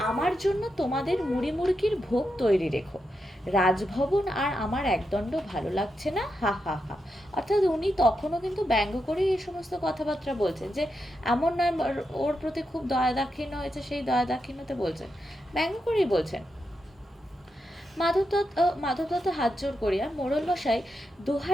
আমার জন্য তোমাদের মুড়ি মুড়কির ভোগ তৈরি রেখো। রাজভবন আর আমার একদণ্ড ভালো লাগছে না, হা হা হা। অর্থাৎ উনি তখনও কিন্তু ব্যঙ্গ করে এই সমস্ত কথাবার্তা বলছেন, যে এমন নয় ওর প্রতি খুব দয়া দাক্ষিণ্য হয়েছে, সেই দয়া দাক্ষিণ্যতে বলছেন, ব্যঙ্গ করেই বলছেন। মাধব দত্ত হাত জোর করিয়া, মোড়ল মশাই,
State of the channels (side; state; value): both; normal; correlation 0.86